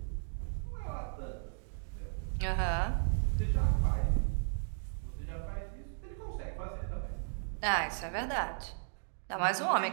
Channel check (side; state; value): left; silent; digital silence